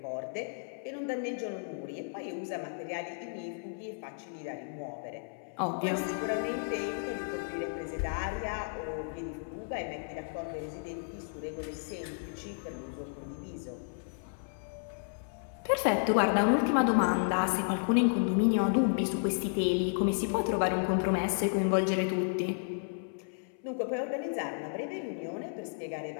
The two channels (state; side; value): silent; right; 56 dB below the other